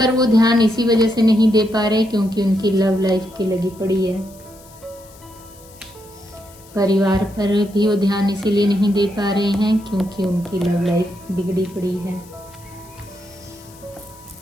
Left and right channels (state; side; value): noise; left; hiss, 24 dB below the sound